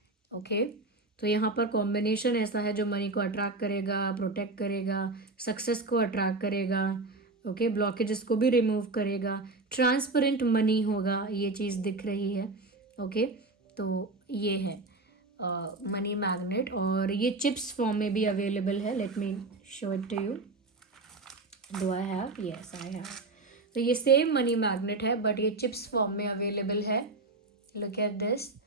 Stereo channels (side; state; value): left; quieter; 3.3 dB